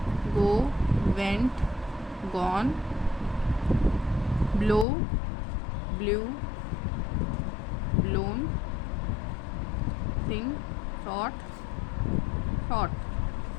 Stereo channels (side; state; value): right; drops out; at 4.9 s